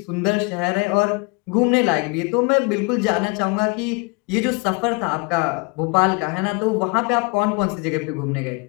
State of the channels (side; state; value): right; quieter; 31.0 dB